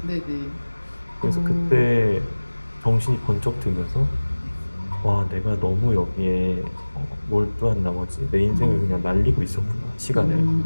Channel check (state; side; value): inverted; both; correlation -1.00